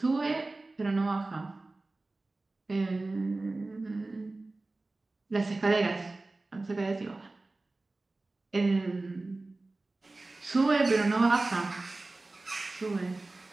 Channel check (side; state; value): left; quieter; 3.1 dB